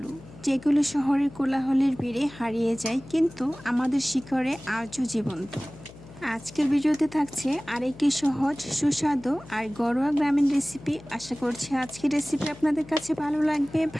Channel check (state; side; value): noise; left; hum, 19 dB below the sound